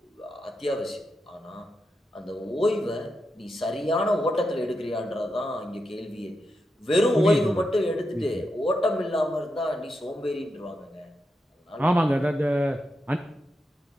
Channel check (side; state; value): both; normal; correlation 0.86